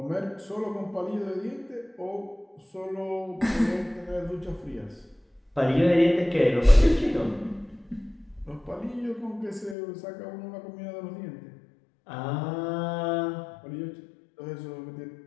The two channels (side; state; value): right; drops out; at 9.8 s